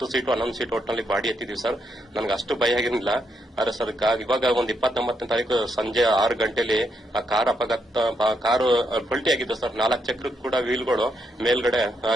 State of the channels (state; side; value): normal; both; correlation 0.78